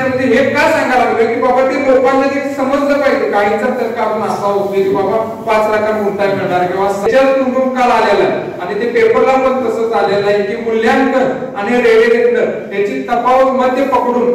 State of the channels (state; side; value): identical; both; correlation 1.00